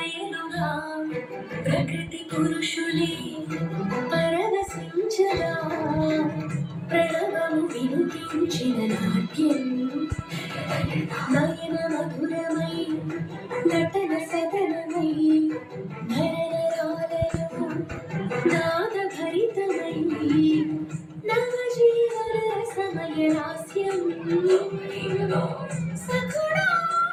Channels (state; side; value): identical; both; correlation 1.00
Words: ప్రకృతి పురుషులే పరవశించగా ప్రణవము వినిపించిన నాట్యం నయన మధురమై నటన సదనమై నరనరాలలో నాదభరితమై నవజీవన సమయ లాస్యం సఖుడా